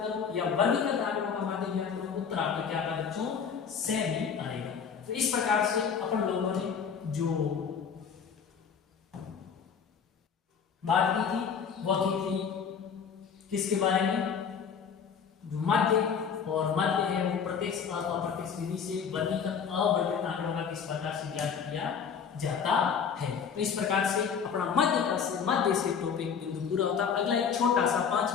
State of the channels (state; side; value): quieter; right; 6.8 dB